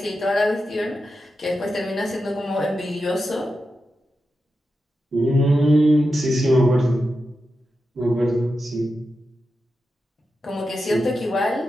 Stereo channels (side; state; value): both; normal; correlation 0.89